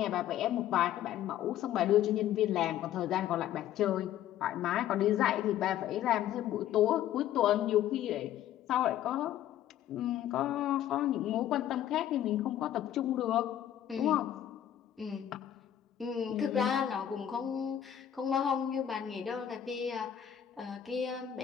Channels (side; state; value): right; quieter; 11.1 dB